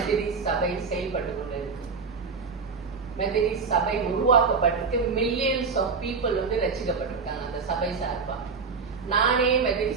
சபை செயல்பட்டு கொண்டு இருக்கு. மெத்தடிஸ்ட் சபை உருவாக்கப்பட்டிருக்கு. மில்லியன்ஸ் ஆஃப் பீப்புள் ரசிக்கப்பட்டிருக்காங்க அந்த சபை சார்பா. நானே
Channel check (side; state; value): left; quieter; 5.0 dB